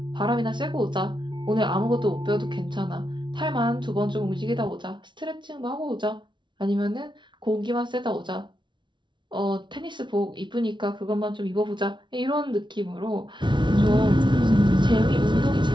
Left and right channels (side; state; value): left; late; 0.23 ms